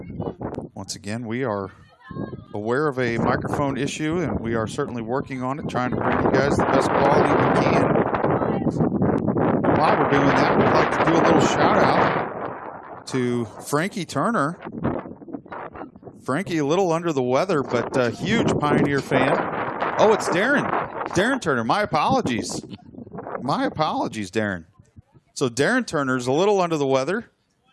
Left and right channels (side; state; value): both; identical; correlation 1.00